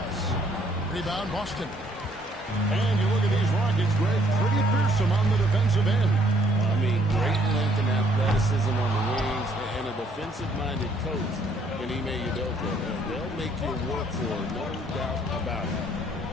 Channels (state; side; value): normal; both; correlation 0.65